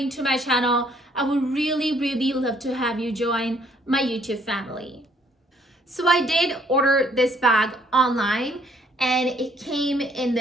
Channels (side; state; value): both; normal; correlation 0.64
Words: to my channel. I would really love to have you join my YouTube family. So I did order this bag online, and it came in